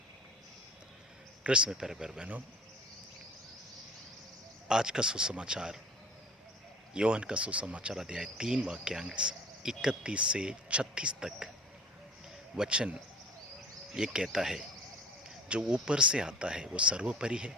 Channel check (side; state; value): both; normal; correlation 0.44